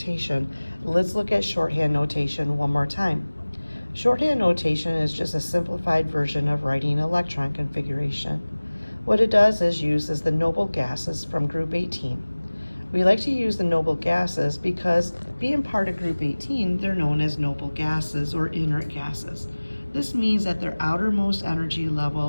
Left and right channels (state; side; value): inverted; both; correlation -1.00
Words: let's look at shorthand notation one more time. Shorthand notation is just a simplified version of writing electron configuration. What it does is uses the noble gases from group 18. We like to use the noble gases because being part of group 18, they're known as noble gases or inert gases. This means that their outermost energy